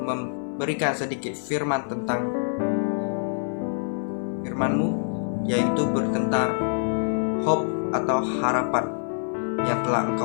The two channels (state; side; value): silent; right; 56 dB below the other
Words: sedikit firman tentang firman-Mu, yaitu bertentang hope atau harapan yang telah